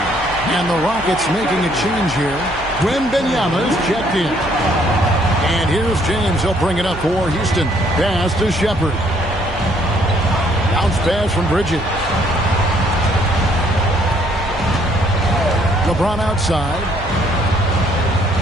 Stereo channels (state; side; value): noise; right; hum, 15 dB below the sound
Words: And the Rockets making a change here. Wembanyama's checked in. And here's James. He'll bring it up for Houston. Pass to Shepard. Bounce pass from Bridges. LeBron outside.